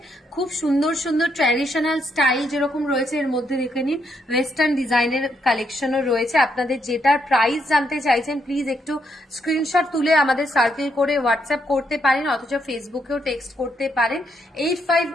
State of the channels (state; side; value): normal; both; correlation 0.76